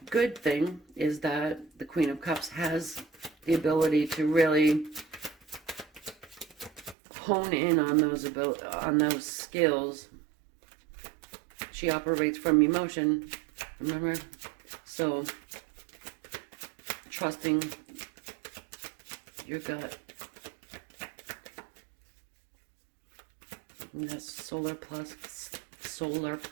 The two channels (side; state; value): left; drops out; at 7.0 s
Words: Good thing is that the Queen of Cups has the ability to really hone in on those skills. She operates from emotion, remember? So trusting your gut. And that's solar plexus.